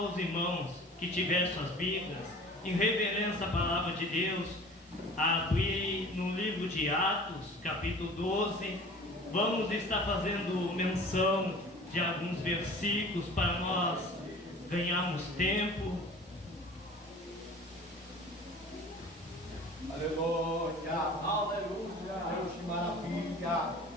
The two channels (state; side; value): normal; both; correlation 0.43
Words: irmãos que tiverem suas Bíblias, em reverência à palavra de Deus, a abrir no livro de Atos, capítulo 12. Vamos estar fazendo menção de alguns versículos para nós ganharmos tempo. Aleluia, aleluia, Deus, que maravilha.